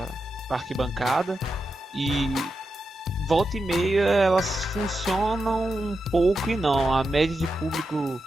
arquibancada, e volta e meia elas funcionam um pouco e não. A média de público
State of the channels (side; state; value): both; normal; correlation 0.88